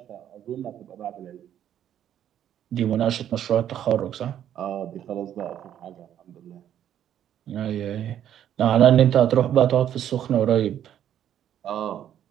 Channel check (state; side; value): quieter; left; 10.4 dB